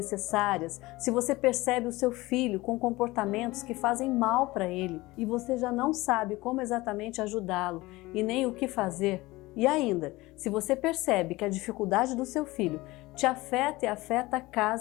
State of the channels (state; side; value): quieter; right; 20.3 dB